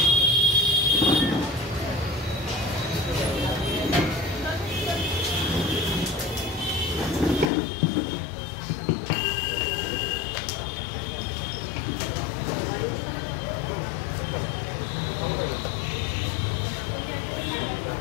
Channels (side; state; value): right; drops out; at 7.5 s